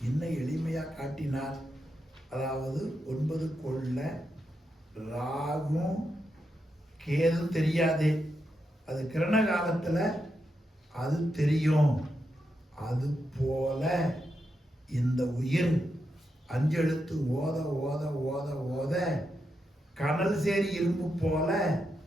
இன்னும் எளிமையா காட்டினார். அதாவது 9 கொள்ள ராகும் கேதும் தெரியாது, அது கிரண காலத்துல அது தெரியும். அது போல இந்த உயிர் அஞ்செழுத்து ஓத ஓத ஓத ஓத கனல் சேரி இரும்பு போல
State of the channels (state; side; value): normal; both; correlation 0.85